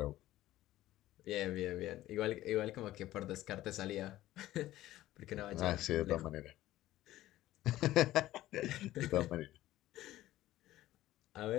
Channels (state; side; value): quieter; right; 15.1 dB